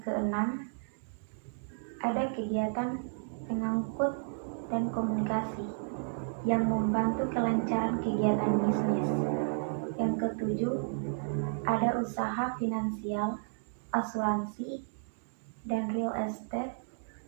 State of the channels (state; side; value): silent; left; digital silence